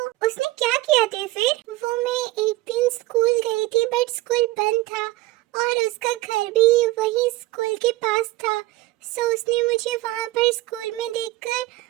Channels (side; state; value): left; quieter; 18.6 dB